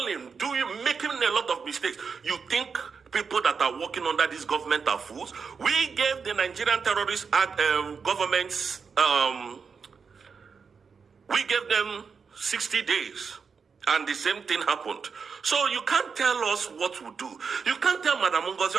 making a lot of mistakes. You think people that are working under this government are fools? We gave the Nigerian terrorist governments, we gave them 60 days. And the same thing happened. So you can't tell us what to do. You can't tell Madam Ngozi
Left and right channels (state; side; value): quieter; left; 5.7 dB